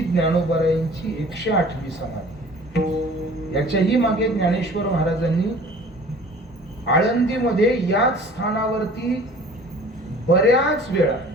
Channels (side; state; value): both; normal; correlation 0.47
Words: ज्ञानोबारायांची 108वी समाधी. याच्याही मागे ज्ञानेश्वर महाराजांनी आळंदीमध्ये याच स्थानावरती बऱ्याच वेळा,